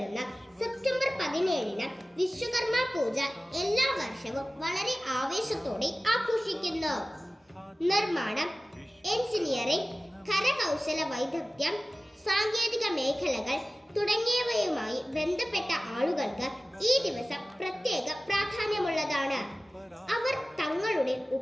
സെപ്റ്റംബർ 17-ന് വിശ്വകർമ്മ പൂജ എല്ലാ വർഷവും വളരെ ആവേശത്തോടെ ആഘോഷിക്കുന്നു. നിർമ്മാണം, എഞ്ചിനീയറിംഗ്, കരകൗശല വൈദഗ്ധ്യം, സാങ്കേതിക മേഖലകൾ തുടങ്ങിയവയുമായി ബന്ധപ്പെട്ട ആളുകൾക്ക് ഈ ദിവസം പ്രത്യേക പ്രാധാന്യമുള്ളതാണ്. അവർ തങ്ങളുടെ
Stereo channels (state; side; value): normal; both; correlation 0.97